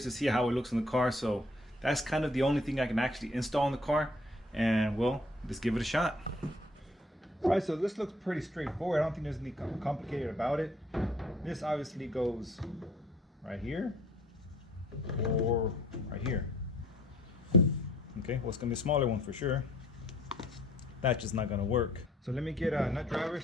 to see how it looks in the car. So that's kind of the only thing I can actually install in the car, and well, let's give it a shot. Alright, so this looks pretty straightforward. I don't think there's anything complicated about it. This obviously goes right here or right here. Okay, well, it's gonna be a smaller one for sure. That's just not gonna work. So let me get a nut driver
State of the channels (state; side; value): normal; both; correlation 0.59